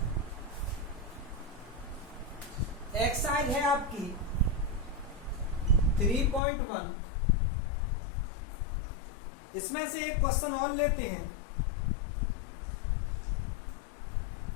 एक्सरसाइज है आपकी 3.1। इसमें से एक क्वेश्चन और लेते हैं।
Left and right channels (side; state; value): right; drops out; at 6.4 s